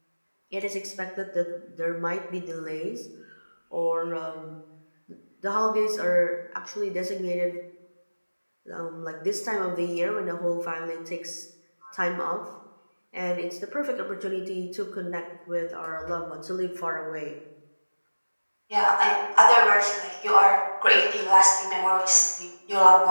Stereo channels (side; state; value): both; inverted; correlation -1.00